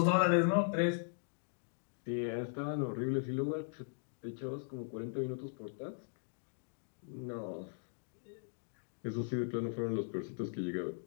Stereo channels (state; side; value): silent; right; digital silence